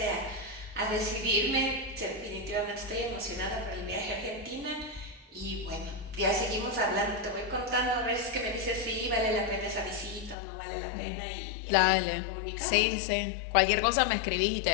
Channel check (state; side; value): drops out; right; at 10.4 s